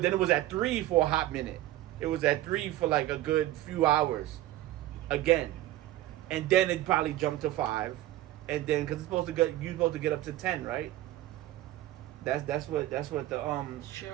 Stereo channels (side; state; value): left; quieter; 15.1 dB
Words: then it was at 3 for a hot minute. It was at 3 for like a good few hours again. And then it probably jumped to 5. And then, because you're supposed to get up to 10, right? That's what the